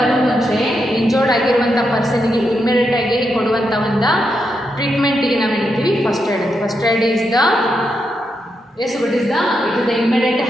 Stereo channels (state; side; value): normal; both; correlation 0.83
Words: ಮುಂಚೆ ಇಂಜೋರ್ಡ್ ಆಗಿರುವಂಥ ಪರ್ಸನಿಗೆ ಇಮ್ಮಿಡಿಯೇಟ್ ಆಗಿ ಕೊಡುವಂಥ ಒಂದು ಟ್ರೀಟ್ಮೆಂಟಿಗೆ ನಾವು ಹೇಳ್ತೀವಿ first aid. First aid is the what is the it is the immediate